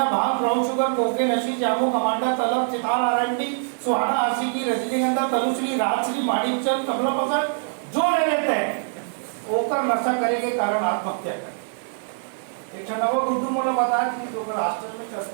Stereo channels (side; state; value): left; silent; digital silence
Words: भांग, brown sugar, cocaine, hashish, Jamu, कमांडा, तलब, चिताल, आरएमडी, सुहाना, आशिकी, रजनीगंधा, तनुश्री, राजश्री, माणिकचंद, कमला पसंद जो ले लेते हैं ओकर नशा करे के कारण आत्महत्या करे। एक नवा गुड्डू मोला बता कि जो राष्ट्र में